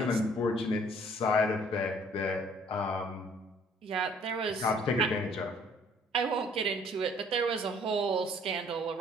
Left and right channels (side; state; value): both; normal; correlation 0.58